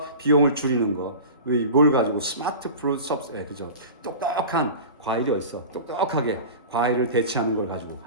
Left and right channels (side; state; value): both; inverted; correlation -0.34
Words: 비용을 줄이는 거. 뭘 가지고 스마트 프루트 섭스 예 그죠? 똑똑한 과일이 어딨어? 똑똑하게 과일을 대체하는 걸 가지고